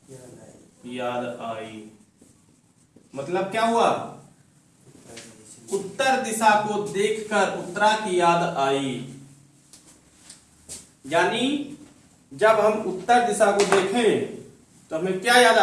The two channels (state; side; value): identical; both; correlation 1.00